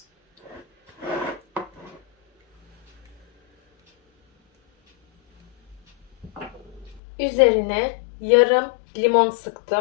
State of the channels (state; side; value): drops out; right; at 7.0 s